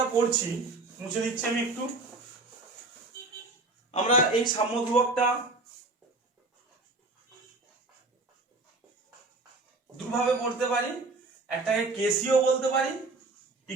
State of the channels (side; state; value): left; quieter; 3.3 dB